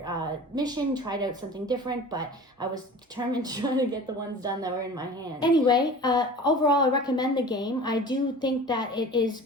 mission, tried out something different. But I was determined to try to get the ones done that were in my hand. Anyway, overall, I recommend the game. I do think that it is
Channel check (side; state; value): both; normal; correlation 0.39